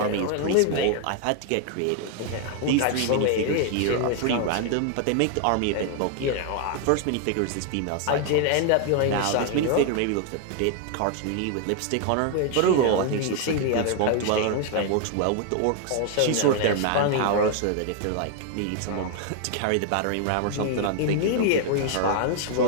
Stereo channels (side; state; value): both; different; correlation 0.00